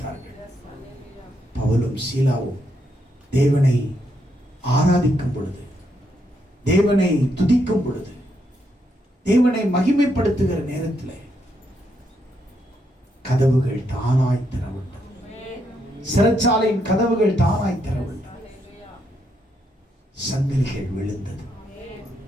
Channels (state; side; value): normal; both; correlation 0.78